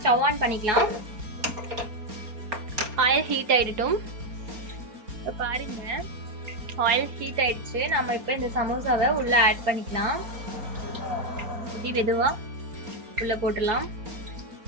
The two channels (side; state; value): left; late; 4.3 ms